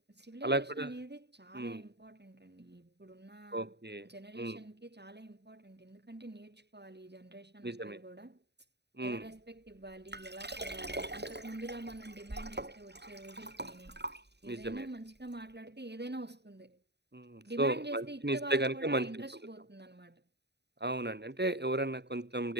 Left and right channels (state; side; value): late; left; 0.49 ms